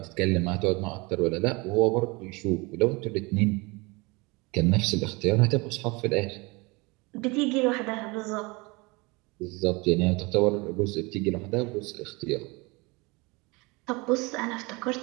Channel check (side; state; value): left; quieter; 25.9 dB